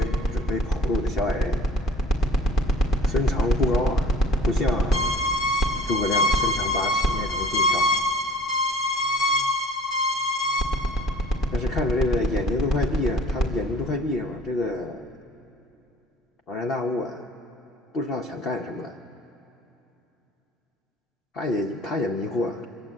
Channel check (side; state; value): both; normal; correlation 0.49